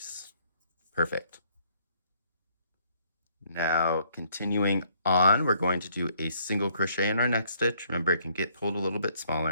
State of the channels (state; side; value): inverted; both; correlation -0.65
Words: Perfect. Now, continuing on, we're going to do a single crochet in our next stitch. Remember, it can get pulled a little bit